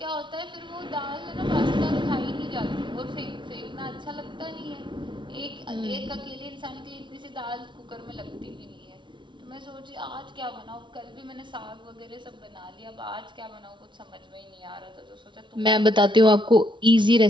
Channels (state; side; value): late; left; 0.23 ms